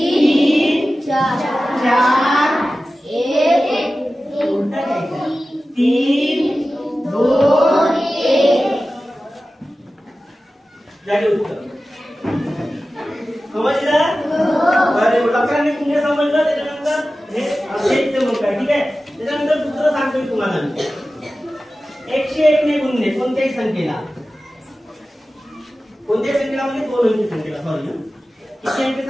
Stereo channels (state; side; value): normal; both; correlation 0.95